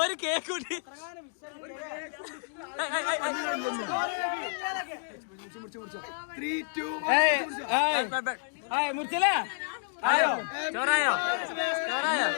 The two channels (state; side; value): silent; right; digital silence